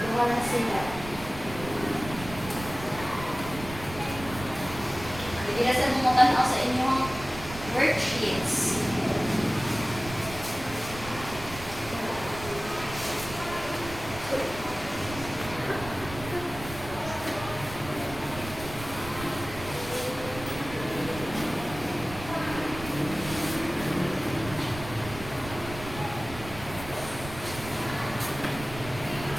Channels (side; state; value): right; noise; rumble, 12 dB below the sound